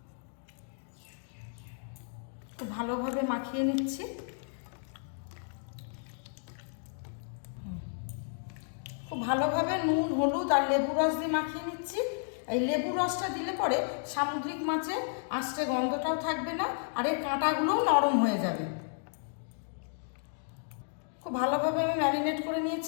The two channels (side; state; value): right; silent; digital silence